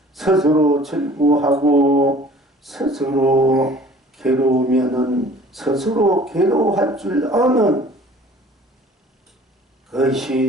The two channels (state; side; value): normal; both; correlation 0.49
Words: 스스로 즐거워하고 스스로 괴로우면은 스스로 괴로워할 줄 아는